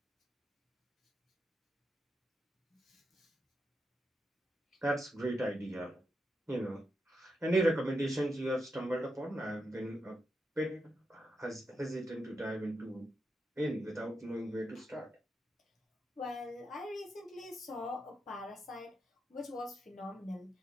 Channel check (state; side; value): normal; both; correlation 0.85